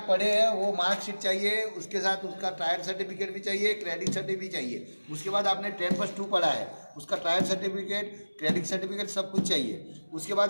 पढ़े हैं वो मार्कशीट चाहिए, उसके साथ उसका ट्रायल सर्टिफिकेट भी चाहिए, क्रेडिट सर्टिफिकेट भी चाहिए। उसके बाद आपने 10+2 पढ़ा है, उसका ट्रायल सर्टिफिकेट, क्रेडिट सर्टिफिकेट सब कुछ चाहिए। उसके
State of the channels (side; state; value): both; inverted; correlation -1.00